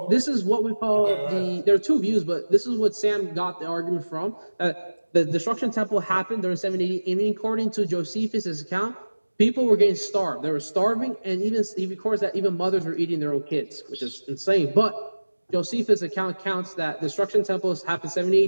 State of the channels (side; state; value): both; inverted; correlation -1.00